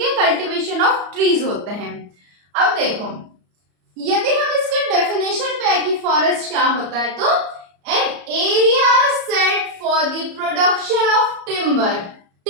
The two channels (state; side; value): late; left; 34 ms